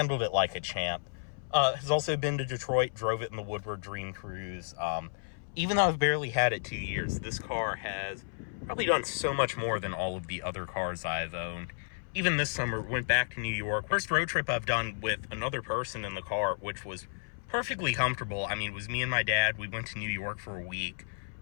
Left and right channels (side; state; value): right; silent; 56 dB below the other